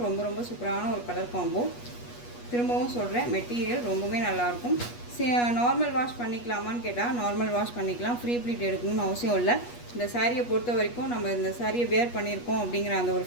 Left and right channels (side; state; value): right; late; 8.3 ms